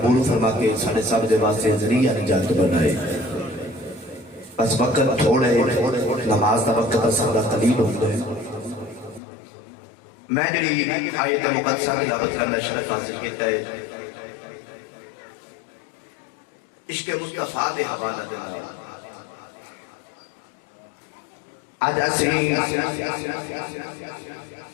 فرما کے ساڑھے سب دے واسے ذریعہ نجات بنائے. بس وقت تھوڑے نماز دا وقت سارا قلیل ہوتا ہے. میں جڑی آیت مقدسہ تلاوت کرنا شرف حاصل کیتا ہے عشق مصطفیٰ دے حوالہ دینا. آج ایسے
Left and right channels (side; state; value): right; drops out; at 9.2 s